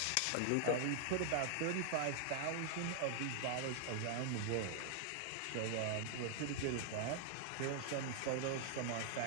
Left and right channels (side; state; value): both; different; correlation 0.00